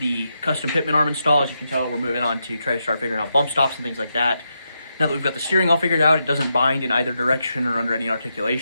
custom Pitman arm install. As you can tell, we're moving on to try to start figuring out bump stops and things like that. Now that we've got the steering all figured out, it doesn't bind in either direction or under any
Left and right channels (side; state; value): both; inverted; correlation -0.84